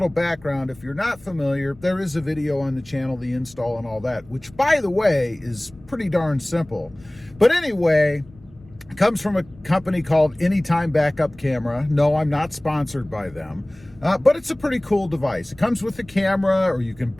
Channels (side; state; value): left; noise; rumble, 24 dB below the sound